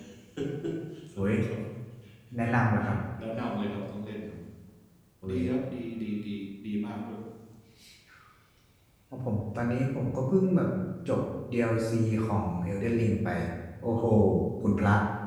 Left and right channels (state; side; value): identical; both; correlation 1.00